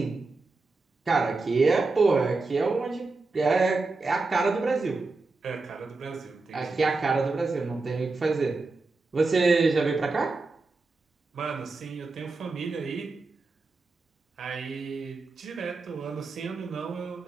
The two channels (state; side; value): quieter; left; 3.7 dB